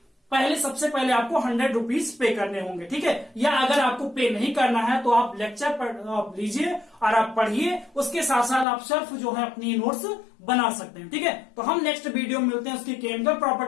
सबसे पहले आपको 100 रुपीज पे करने होंगे, ठीक है। या अगर आपको पे नहीं करना है तो आप लेक्चर लीजिए और आप पढ़िए, उसके साथ साथ आप सेल्फ जो है अपनी नोट्स बना सकते हैं, ठीक है। तो हम नेक्स्ट वीडियो में मिलते हैं उसकी केमिकल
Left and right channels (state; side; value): drops out; right; at 8.7 s